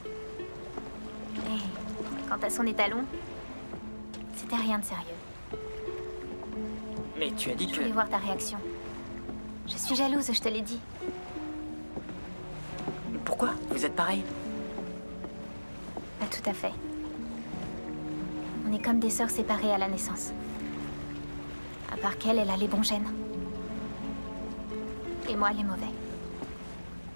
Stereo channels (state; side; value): inverted; both; correlation -1.00